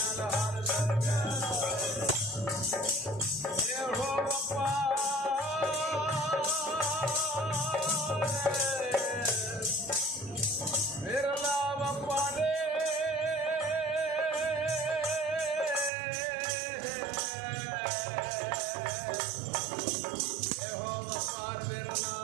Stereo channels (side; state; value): left; drops out; at 15.9 s